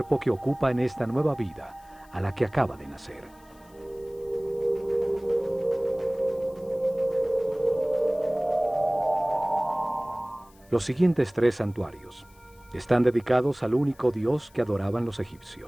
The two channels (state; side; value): noise; left; hiss, 29 dB below the sound